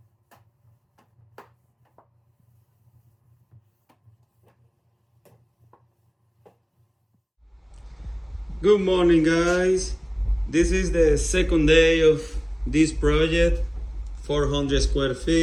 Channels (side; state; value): both; identical; correlation 1.00